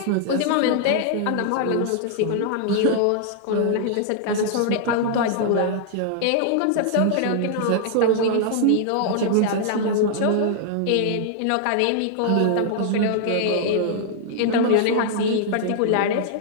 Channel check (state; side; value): different; both; correlation -0.01